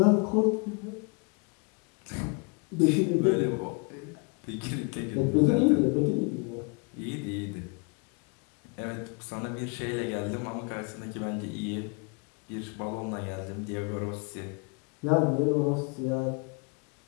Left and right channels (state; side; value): quieter; right; 33.4 dB